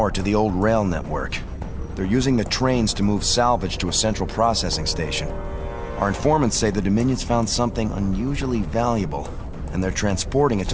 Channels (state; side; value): identical; both; correlation 1.00